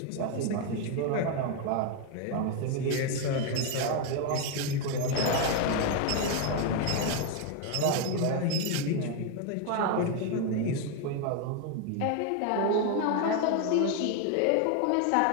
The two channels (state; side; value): different; both; correlation 0.01